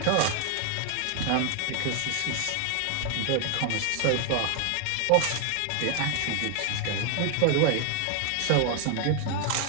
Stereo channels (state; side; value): different; both; correlation 0.00